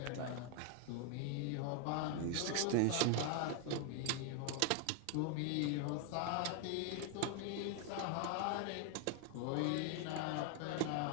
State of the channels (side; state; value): both; different; correlation 0.00